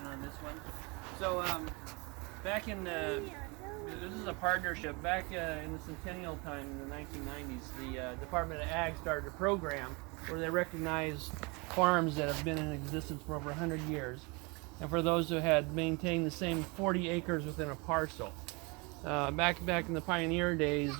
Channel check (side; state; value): left; quieter; 28.6 dB